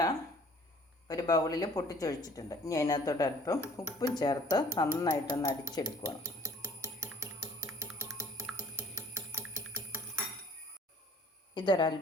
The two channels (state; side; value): normal; both; correlation 0.53